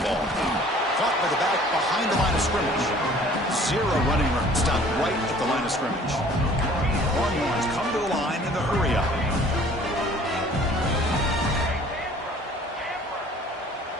ball. Caught by the back behind the line of scrimmage. Zero running room. Stopped right at the line of scrimmage. Longhorns come to the line in the hurry up.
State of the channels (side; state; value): both; normal; correlation 0.52